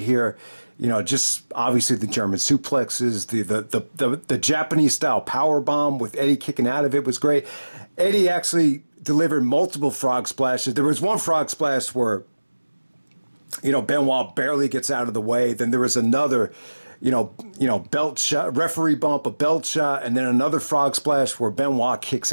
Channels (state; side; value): inverted; both; correlation -1.00